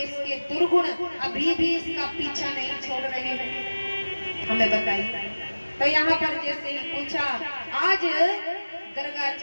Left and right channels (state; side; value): inverted; both; correlation -1.00